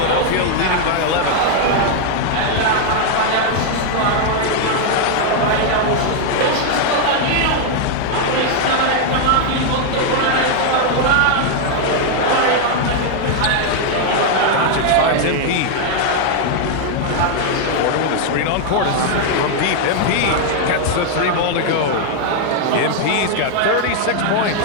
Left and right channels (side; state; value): both; different; correlation 0.00